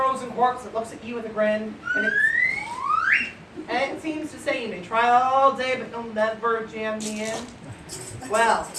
corpse that looks at you with a grin, and it seems to say you may try all day, but you'll never jam me in? Well,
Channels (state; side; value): identical; both; correlation 1.00